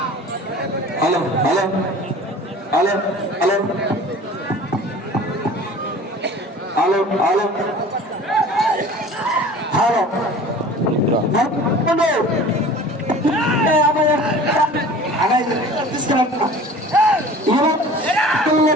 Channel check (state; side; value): normal; both; correlation 0.43